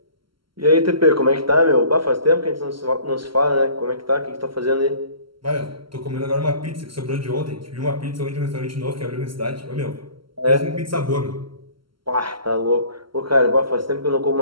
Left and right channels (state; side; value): late; left; 0.74 ms